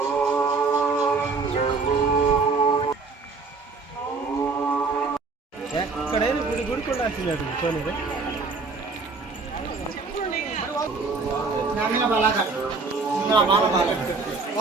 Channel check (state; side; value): quieter; left; 4.2 dB